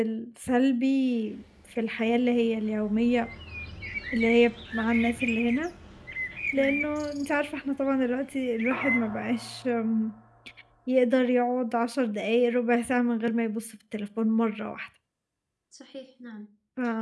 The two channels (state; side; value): identical; both; correlation 1.00